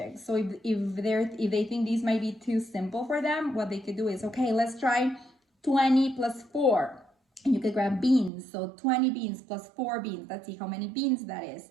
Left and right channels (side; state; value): left; drops out; at 8.3 s